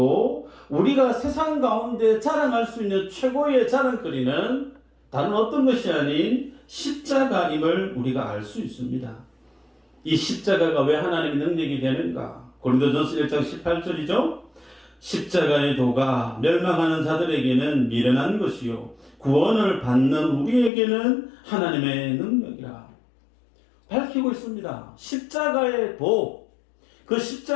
우리가 세상 가운데 자랑할 수 있는 최고의 자랑거리는 다른 어떤 것이 아닌 십자가임을 우리가 알 수 있습니다. 이 십자가가 왜 하나님의 능력이 되는가? 고린도전서 1장 18절이죠. 십자가의 도가 멸망하는 자들에게는 미련한 것이요 구원을 받는 우리에게는 하나님의 능력이라 밝히고 있습니다. 십자가의 도, 그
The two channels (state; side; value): drops out; right; at 20.7 s